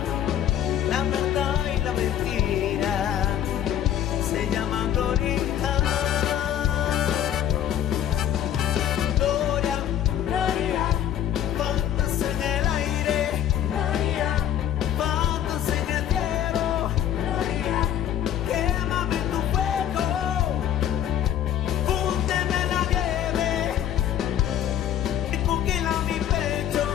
la verdad y la mentira se llaman gloria. Gloria, gloria, faltas en el aire, gloria, faltas en el cielo, gloria, quémame en tu fuego, fúndeme en la nieve, y congela mi pecho,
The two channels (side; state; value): right; quieter; 10.6 dB